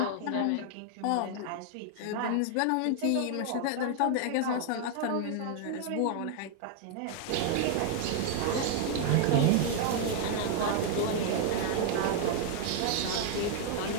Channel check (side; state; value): both; different; correlation 0.00